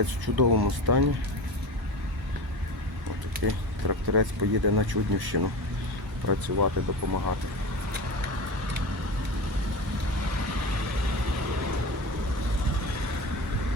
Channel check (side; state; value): both; normal; correlation 0.28